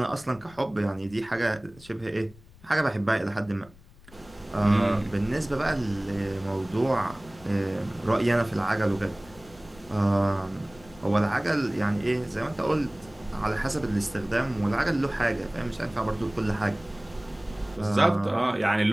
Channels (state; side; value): noise; left; rumble, 23 dB below the sound